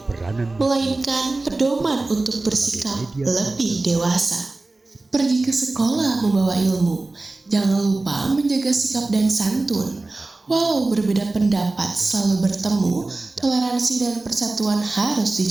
melainkan pedoman untuk bersikap lebih dewasa. Pergi ke sekolah membawa ilmu, jangan lupa menjaga sikap dan santun. Walau berbeda pendapat selalu bertemu, toleransi dan persatuan harus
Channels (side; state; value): left; quieter; 3.2 dB